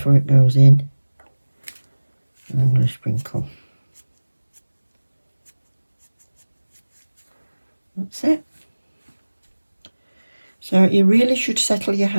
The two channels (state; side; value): inverted; both; correlation -1.00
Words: it goes in. And I'm going to sprinkle. That's it. So you really should settle your